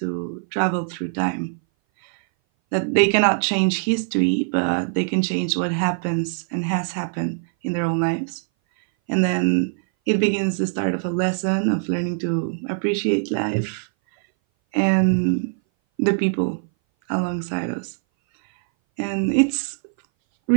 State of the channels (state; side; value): silent; left; 59 dB below the other